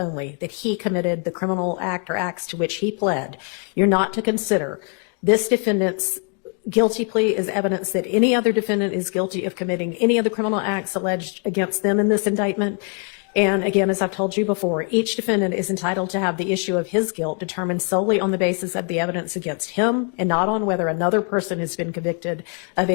that he committed the criminal act or acts to which he pled. You're not to consider this defendant's guilty plea is evidence that any other defendant is guilty of committing any of the criminal acts alleged against them in this indictment. And again, as I've told you before, each defendant is entitled to have the issue of his guilt determined solely on the basis of the evidence against him and not on whether another person has been convicted of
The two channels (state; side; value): quieter; right; 37.5 dB